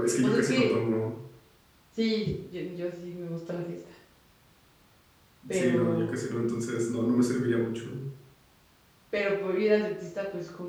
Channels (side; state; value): both; identical; correlation 1.00